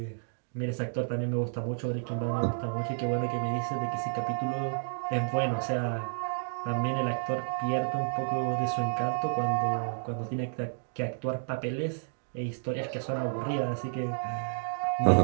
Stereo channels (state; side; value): silent; left; digital silence